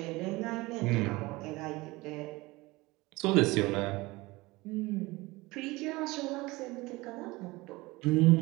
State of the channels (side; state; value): left; quieter; 21.7 dB